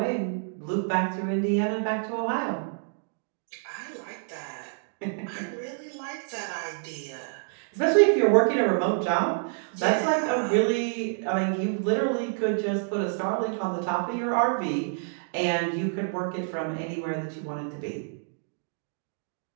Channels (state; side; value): silent; left; digital silence